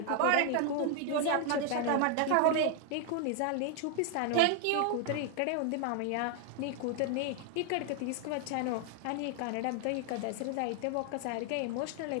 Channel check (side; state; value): both; different; correlation 0.00